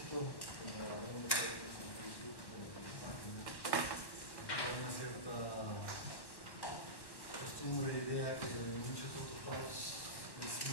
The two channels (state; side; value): late; right; 1.1 ms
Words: como hablamos de en Facebook, en la página, hay una cierta costumbre, idea que en muchos otros lados es